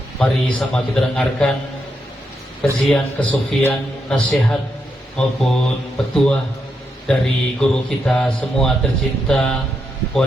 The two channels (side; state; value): both; normal; correlation 0.82